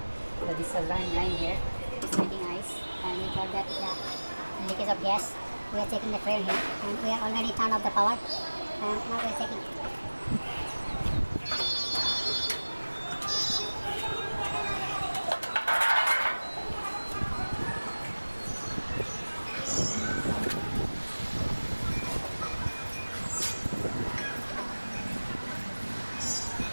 So this is a line here. It's making ice, and we got that leakage of gas. We are checking the frame here, and we are already turned off the power. And now we are checking.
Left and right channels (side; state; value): both; inverted; correlation -1.00